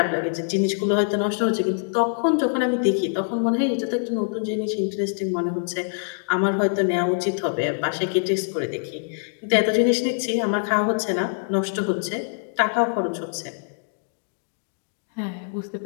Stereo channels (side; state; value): right; silent; digital silence